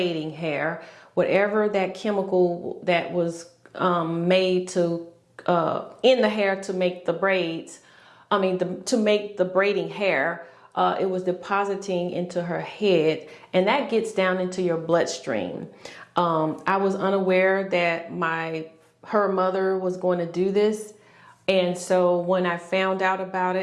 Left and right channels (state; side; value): identical; both; correlation 1.00